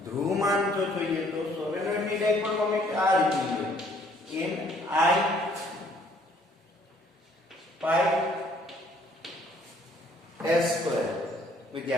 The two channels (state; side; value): normal; both; correlation 0.61